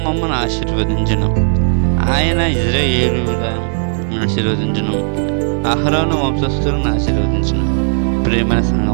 మమ్మను ఆశీర్వదించును, ఆయన ఇశ్రాయేలును ఆశీర్వదించును, అహరోను వంశస్థులను ఆశీర్వదించును. ప్రియమైన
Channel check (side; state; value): left; silent; 58 dB below the other